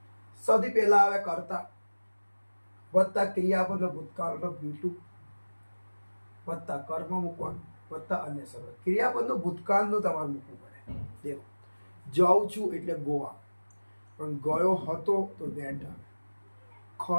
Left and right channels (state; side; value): inverted; both; correlation -1.00